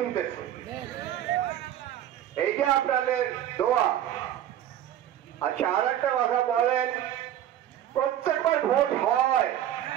এইটা আপনাদের দোয়া। আচ্ছা, আর একটা কথা বলেন, প্রত্যেকবার ভোট হয়,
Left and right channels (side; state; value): left; quieter; 11.4 dB